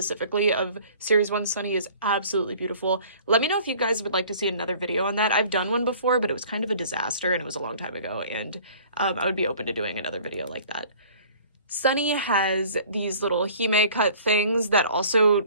of Series 1 Sunny is absolutely beautiful. Let me know if you guys would like to see another video on that. I've done one before, but it was kind of a disaster and it was a long time ago, and I would be open to doing another video like that. Sunny has these little hime cut things that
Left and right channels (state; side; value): inverted; both; correlation -0.50